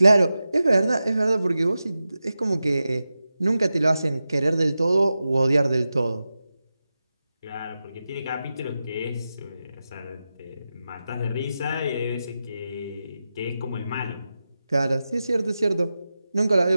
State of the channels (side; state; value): both; inverted; correlation -0.92